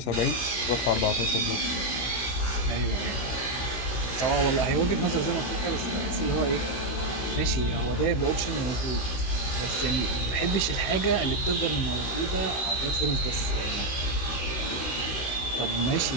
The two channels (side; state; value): right; late; 16 ms